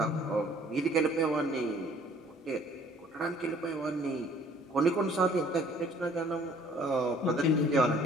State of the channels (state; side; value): normal; both; correlation 0.56